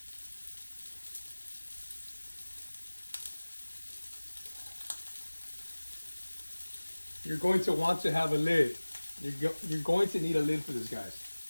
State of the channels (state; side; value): inverted; both; correlation -1.00